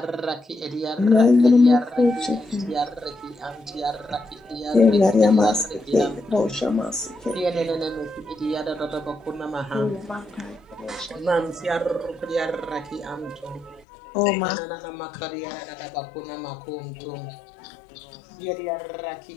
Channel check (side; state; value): right; drops out; at 13.9 s